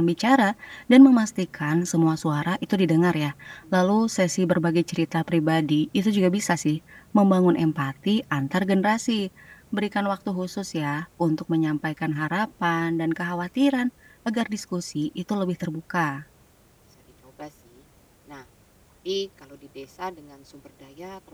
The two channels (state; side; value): identical; both; correlation 1.00